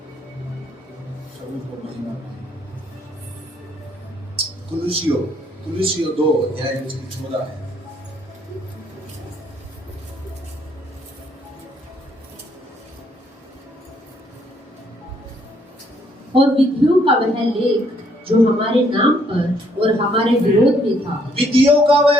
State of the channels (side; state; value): both; normal; correlation 0.68